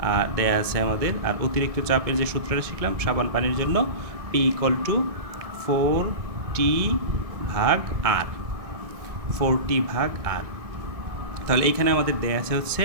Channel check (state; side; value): late; left; 1.6 ms